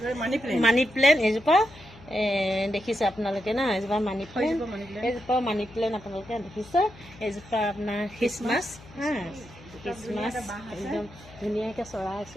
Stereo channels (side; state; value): left; noise; hum, 21 dB below the sound